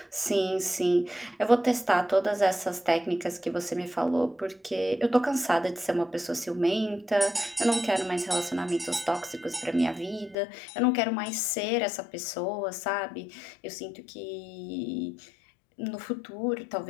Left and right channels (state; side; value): drops out; right; at 10.4 s